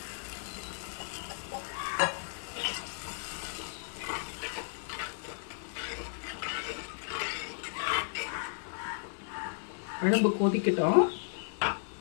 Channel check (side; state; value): right; silent; 55 dB below the other